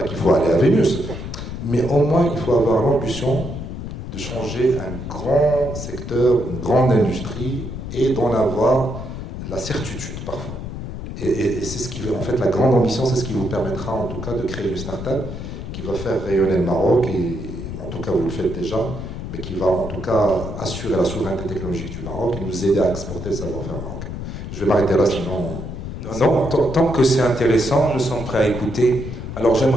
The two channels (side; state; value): left; noise; rumble, 7 dB below the sound